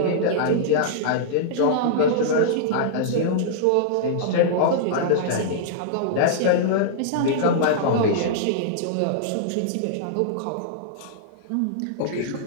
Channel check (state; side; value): different; both; correlation -0.02